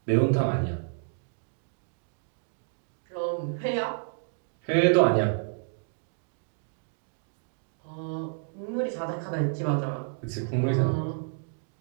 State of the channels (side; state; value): left; silent; digital silence